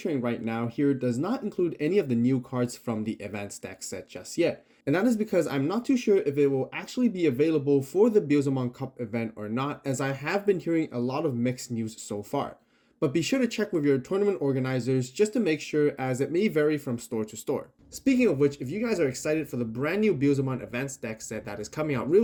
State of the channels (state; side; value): identical; both; correlation 1.00